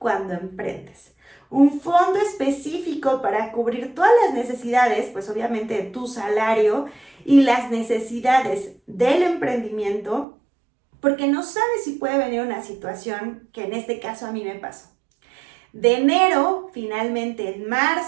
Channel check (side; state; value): left; drops out; at 10.2 s